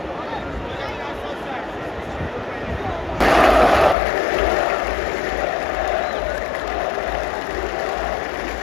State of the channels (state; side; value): drops out; right; at 4.0 s